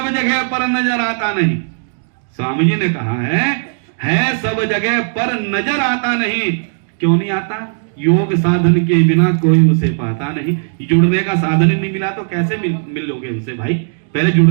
जगह पर नजर आता नहीं। स्वामी जी ने कहा है सब जगह पर नजर आता नहीं। क्यों नहीं आता? योग साधन के बिना कोई उसे पाता नहीं। जुड़ने का साधन नहीं मिला तो कैसे मिलोगे उनसे भाई? पहले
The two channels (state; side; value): silent; left; digital silence